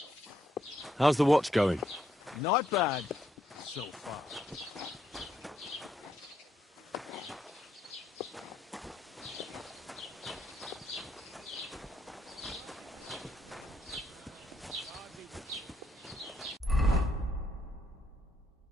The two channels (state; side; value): normal; both; correlation 0.75